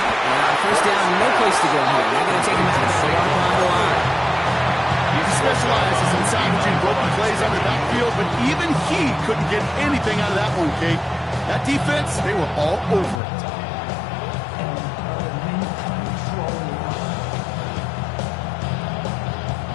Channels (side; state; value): right; drops out; at 13.2 s